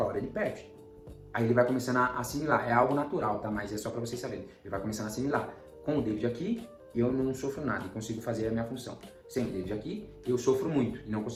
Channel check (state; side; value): identical; both; correlation 1.00